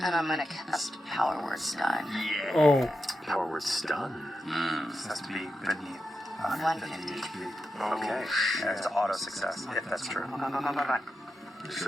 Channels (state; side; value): normal; both; correlation 0.88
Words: I'm gonna cast Power Word Stun. Oh. Power word stun. This has to be beneath 150. HP. Okay. And it's auto success, if that's true. He